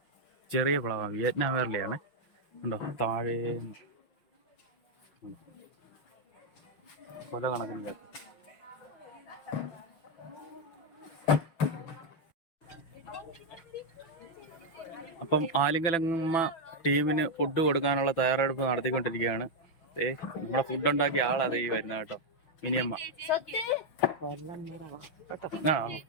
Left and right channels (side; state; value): right; late; 6.0 ms